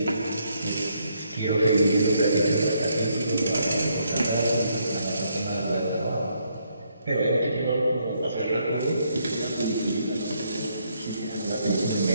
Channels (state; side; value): inverted; both; correlation -0.73